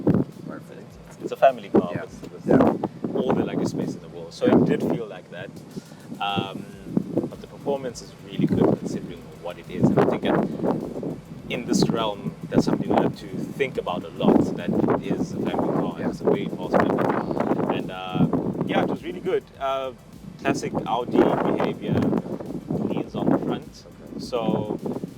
Perfect. It's a family car Yeah. with all the luggage space in the world. So it did feel like that. But the performance is really good considering what it is. And I think in this realm, that's something we have to think about a lot, that it is a family car. Yeah. It's a very fast family car. And yeah, it was really good. Classic Audi behavior, leans on the front. Okay. So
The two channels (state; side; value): identical; both; correlation 1.00